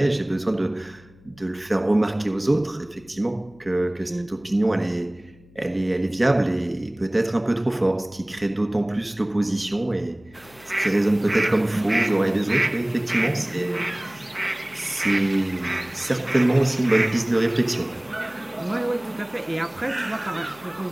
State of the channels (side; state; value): left; noise; hum, 26 dB below the sound